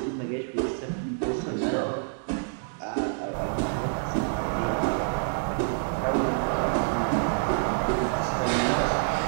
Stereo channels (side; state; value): left; silent; digital silence